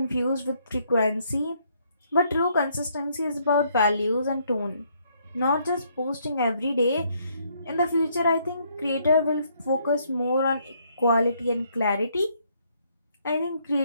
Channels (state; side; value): inverted; both; correlation -0.70